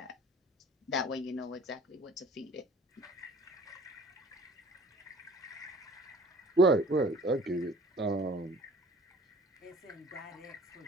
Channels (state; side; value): normal; both; correlation 0.50